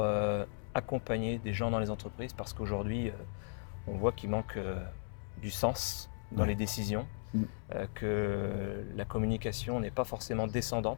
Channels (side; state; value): right; silent; 54 dB below the other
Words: accompagner des gens dans les entreprises, parce qu'aujourd'hui, on voit qu'il manque du sens dans les décisions, que la communication n'est pas forcément